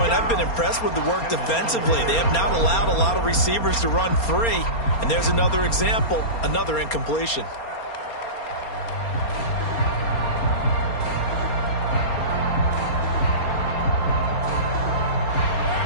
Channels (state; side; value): late; right; 4.3 ms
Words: I've been impressed with the work defensively. They have not allowed a lot of receivers to run free. And there's another example, another incompletion.